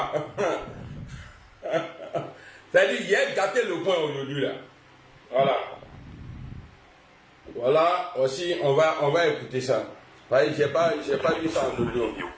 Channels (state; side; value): identical; both; correlation 1.00